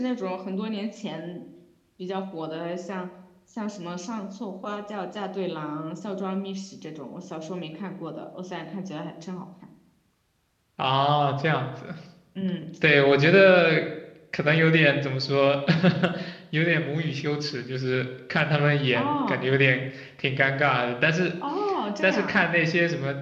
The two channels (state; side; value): identical; both; correlation 1.00